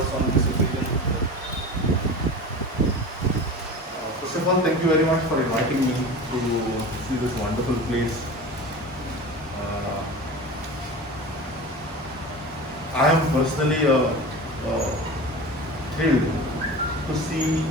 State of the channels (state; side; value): normal; both; correlation 0.32